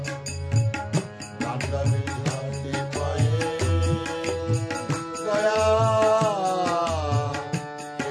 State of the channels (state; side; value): identical; both; correlation 1.00